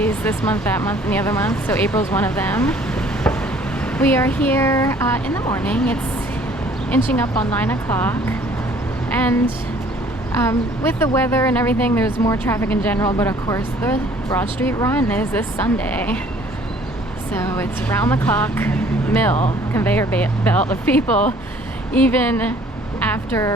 this month, that month, and the other month, so April's one of them. We are here in the morning. It's inching up on 9 o'clock, and with the weather and everything, there's more traffic in general, but of course the Broad Street Run is this Sunday. So it's round the clock mill, conveyor belt of people, even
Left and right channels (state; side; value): normal; both; correlation 0.56